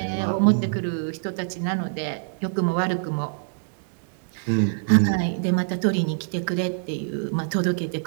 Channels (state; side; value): silent; left; digital silence